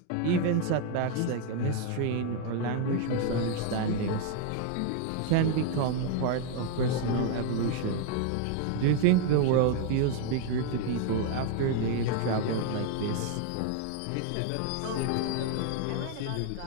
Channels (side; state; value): both; different; correlation 0.00